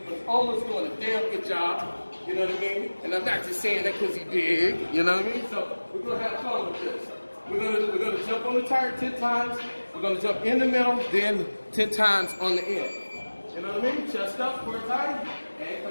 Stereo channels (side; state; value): both; inverted; correlation -1.00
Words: Ola's doing a damn good job. You know what I mean? And I'm not just saying that because he's big. You know what I mean? So we're going to have fun with this. We're gonna jump on the tire 10 times. We're gonna jump in the middle, then 10 times on the end. You know what I mean? Chest up, core tight,